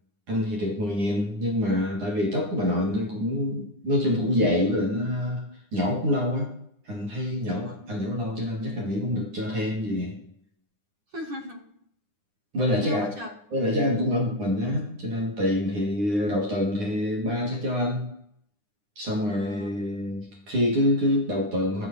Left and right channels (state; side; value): late; left; 9.8 ms